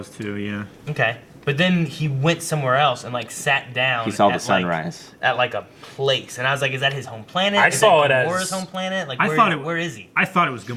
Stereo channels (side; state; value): both; identical; correlation 1.00